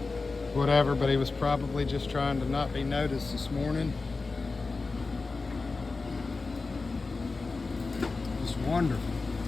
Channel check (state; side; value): quieter; right; 3.9 dB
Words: whatever, but he was probably just trying to not be noticed this morning. Just wonderful.